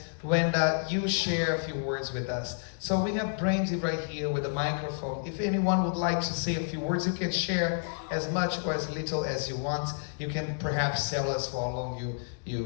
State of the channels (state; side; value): silent; right; digital silence